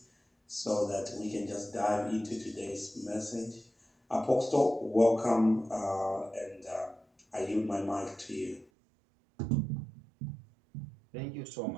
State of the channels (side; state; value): left; drops out; at 8.7 s